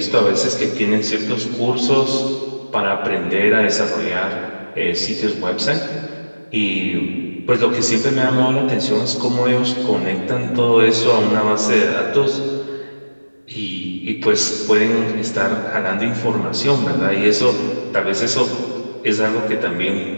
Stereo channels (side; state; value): both; inverted; correlation -1.00